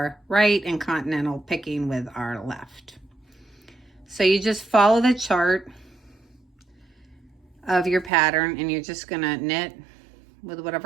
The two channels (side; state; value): left; drops out; at 8.1 s